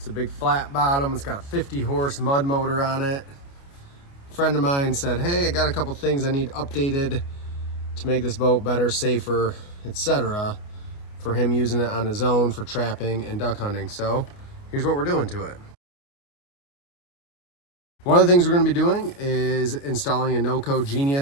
a big flat bottom. It's got a 50 horse mud motor on it. A friend of mine said, hey, I got a couple things I need updated to make this boat better, safer, etc. for him using it on his own for trapping and duck hunting. So here's what we're doing to it. One of the things we're going to be doing is installing a NoCo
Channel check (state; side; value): late; right; 29 ms